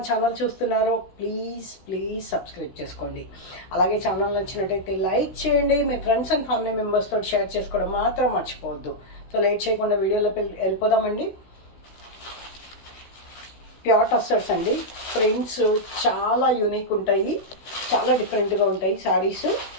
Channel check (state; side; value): late; right; 16 ms